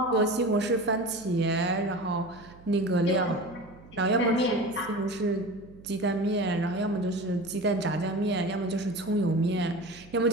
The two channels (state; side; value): noise; right; hum, 22 dB below the sound